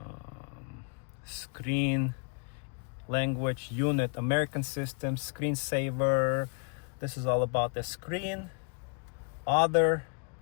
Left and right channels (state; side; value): quieter; right; 39.5 dB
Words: screen, language, unit, American system, screensaver. This is all about the screen. Other,